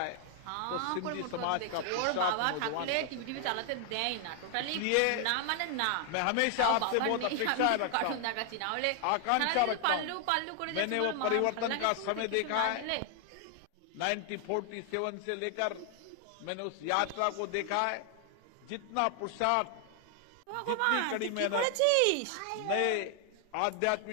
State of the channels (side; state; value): both; different; correlation 0.00